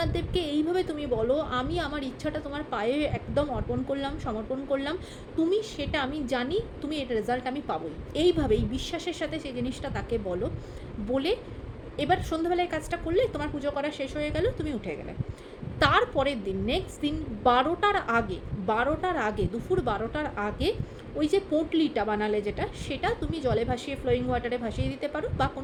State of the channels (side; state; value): both; identical; correlation 1.00